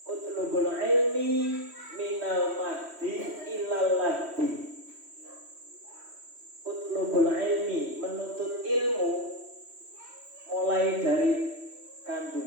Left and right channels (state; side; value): late; left; 3.1 ms